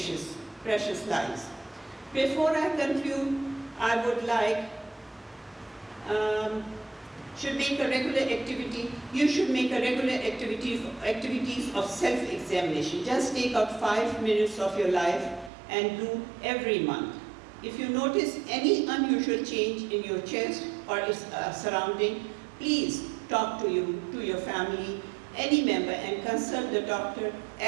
lives. Before I conclude, I would like should make a regular activity. You should make a regular activities of self-examination. Just take out 5 minutes of your life and do every month. If you notice any unusual change in your chest or its surrounding, please talk to your family, any member, and consult the doctor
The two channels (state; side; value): drops out; left; at 15.5 s